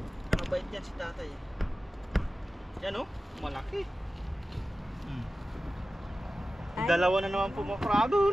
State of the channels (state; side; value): normal; both; correlation 0.95